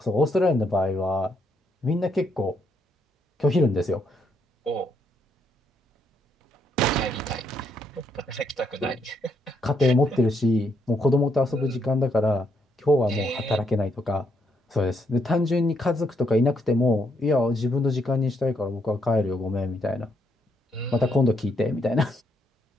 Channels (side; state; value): both; normal; correlation 0.76